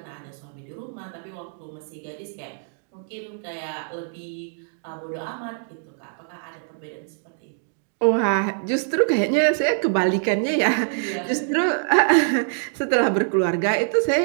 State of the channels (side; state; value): left; silent; digital silence